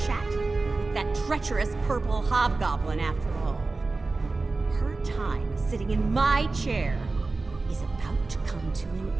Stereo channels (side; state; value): left; quieter; 3.6 dB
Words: with that treacherous purple hobgoblin after all. Her time sitting in my chair is about to come to an